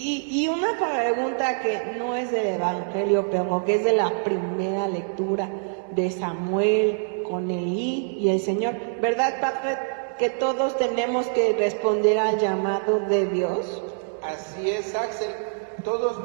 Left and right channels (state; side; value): silent; left; digital silence